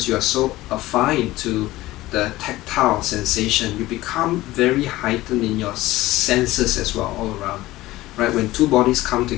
you are so affine to the tactile sensation, you become very heightened in your senses as well, all around. Right, when two bodies come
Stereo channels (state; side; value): quieter; right; 17.5 dB